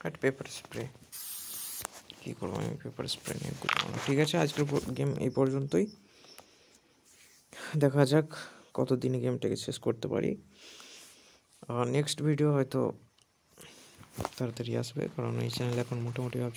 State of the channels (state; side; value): identical; both; correlation 1.00